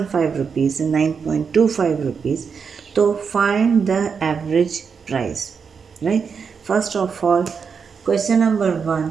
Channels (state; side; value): quieter; left; 6.0 dB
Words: rupees and 9.25 rupees. तो find the average price. Right, first of all question number 1,